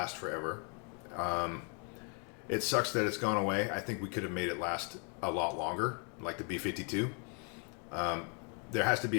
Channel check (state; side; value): quieter; right; 38.7 dB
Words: forever. It sucks that it's gone away. I think we could have made it last a lot longer, like the B-52. There has to